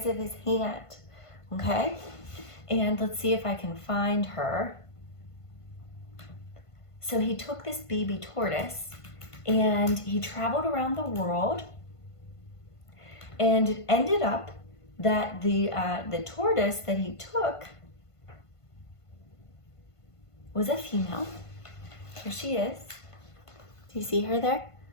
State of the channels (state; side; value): late; right; 1.5 ms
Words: of his hand. Okay, and let's see if I can find her. So he took this baby tortoise and he traveled around the world, and it ended up that the tortoise that he took was a female. Here she is. Do you see her there?